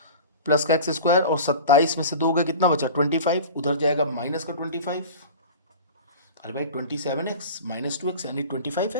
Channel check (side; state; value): both; inverted; correlation -0.36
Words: प्लस का x², और 27 में से 2 गए कितना बचा 25, उधर जाएगा माइनस का 25। अरे भाई 27x - 2x यानी